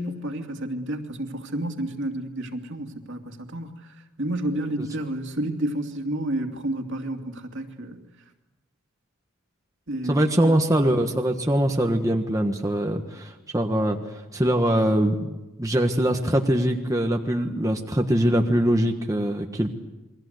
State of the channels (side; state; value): both; normal; correlation 0.81